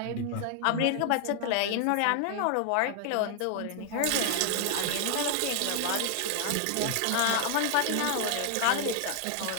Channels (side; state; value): both; different; correlation 0.00